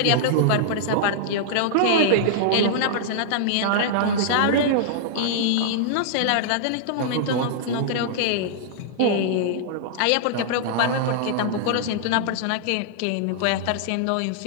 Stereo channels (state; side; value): different; both; correlation -0.01